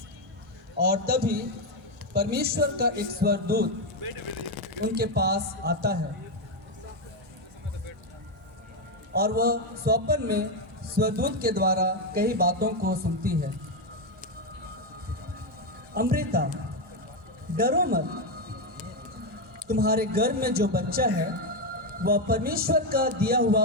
और तभी परमेश्वर का एक स्वर्गदूत उनके पास आता है और वह स्वप्न में स्वर्गदूत के द्वारा कई बातों को सुनती है। अमृता, डरो मत, तुम्हारे गर्भ में जो बच्चा है वह परमेश्वर का दिया हुआ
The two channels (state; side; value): normal; both; correlation 0.06